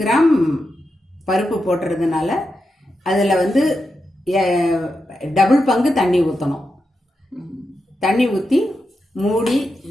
கிராம் பருப்பு போட்டுறதுனால அதில் டபுள் பங்கு தண்ணி ஊற்றணும். தண்ணி ஊற்றி மூடி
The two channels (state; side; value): normal; both; correlation 0.88